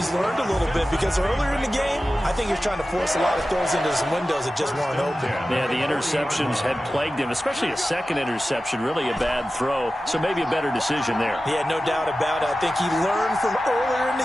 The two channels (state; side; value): normal; both; correlation 0.94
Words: learned a little bit because earlier in the game, I think he was trying to force a lot of throws into some windows that just weren't open. Yeah, the interceptions had plagued him, especially a second interception, really a bad throw. So maybe a better decision there. Yeah, no doubt about it. I think he learned from earlier in